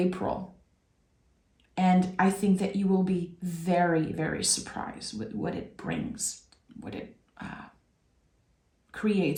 And I think that you will be very, very surprised with what it brings, what it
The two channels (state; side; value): identical; both; correlation 1.00